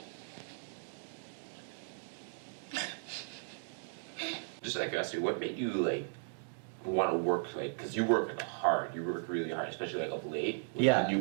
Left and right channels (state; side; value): silent; left; digital silence